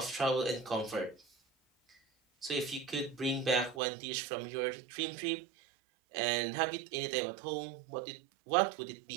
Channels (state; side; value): drops out; left; at 3.8 s